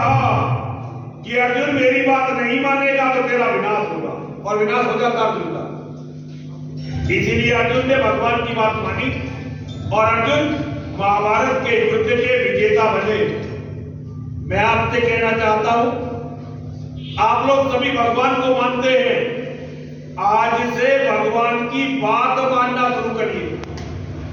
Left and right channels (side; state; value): both; identical; correlation 1.00